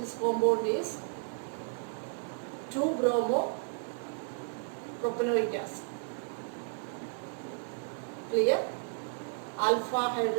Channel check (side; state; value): left; silent; 56 dB below the other